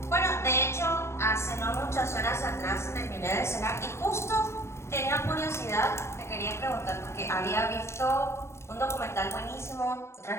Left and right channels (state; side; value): late; right; 0.13 ms